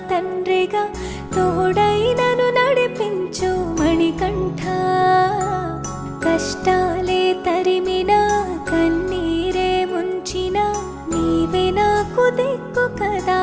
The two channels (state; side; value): identical; both; correlation 1.00